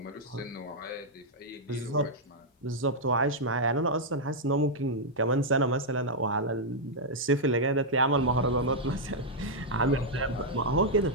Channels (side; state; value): both; normal; correlation -0.05